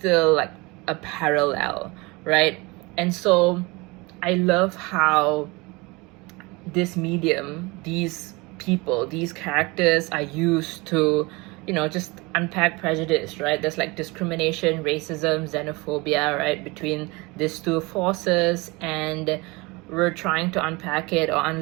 like a parallel, right? And so I love how this medium, these people, these characters are used to, you know, just unpack prejudice, right? There's like discrimination, racism, xenophobia, right, between these two forces, and we're trying to unpack it or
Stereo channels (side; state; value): left; quieter; 25.1 dB